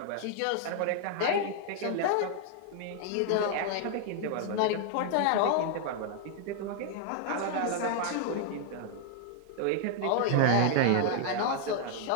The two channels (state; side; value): different; both; correlation 0.00